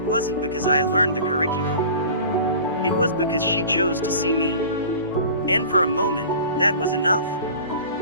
wasn't because I learned the curriculum. It was because she chose to see me. And for a moment, that was enough.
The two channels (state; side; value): inverted; both; correlation -0.41